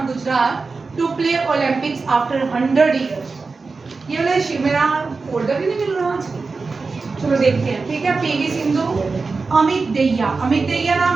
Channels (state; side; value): quieter; left; 4.2 dB